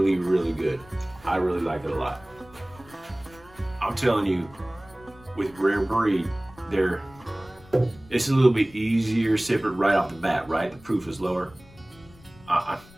really good. I really like it a lot. I'm telling you, with Rare Breed, it's a little bit easier sipping right off the bat, right? The proof is lower.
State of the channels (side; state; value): left; noise; rumble, 24 dB below the sound